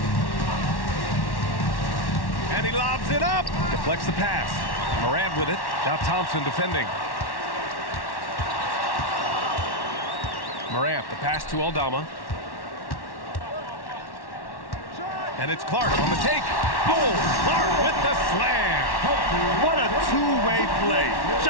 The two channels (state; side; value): late; right; 1.1 ms